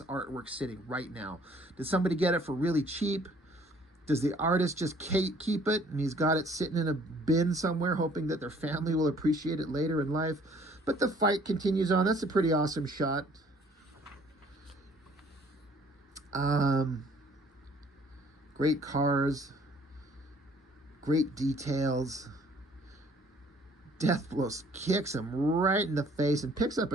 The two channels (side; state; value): both; normal; correlation 0.58